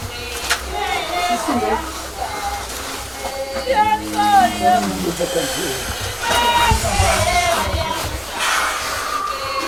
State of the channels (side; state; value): both; identical; correlation 1.00